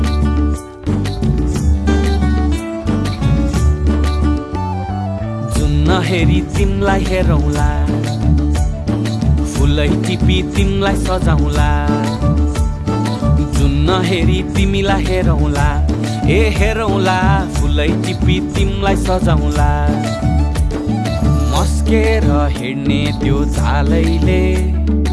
जुन नहेरी तिमलाई हेरौँला, फुलै टिपी तिमलाई सजाउँला, जुन नहेरी तिमीलाई हेरौँला, हेरौँला, फुलै टिपी तिमलाई सजाउँला। मस्केर हिँड्ने त्यो चालैले,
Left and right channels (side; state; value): both; identical; correlation 1.00